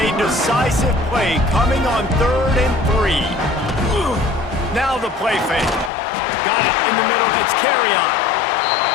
a decisive play coming on 3rd and 3. Now the play fake. Got it in the middle. It's carry on.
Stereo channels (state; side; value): drops out; right; at 5.9 s